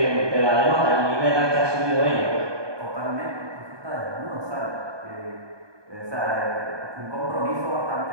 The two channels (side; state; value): left; late; 1.2 ms